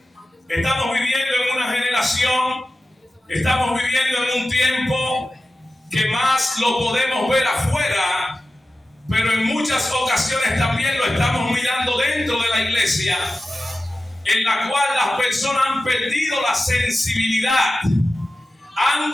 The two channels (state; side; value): normal; both; correlation 0.94